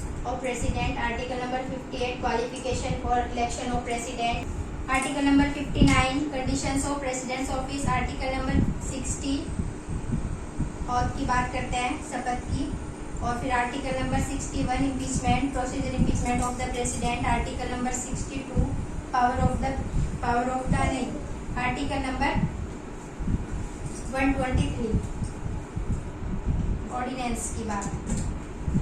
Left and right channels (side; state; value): both; identical; correlation 1.00